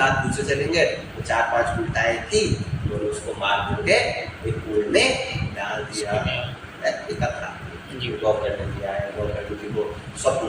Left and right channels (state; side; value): identical; both; correlation 1.00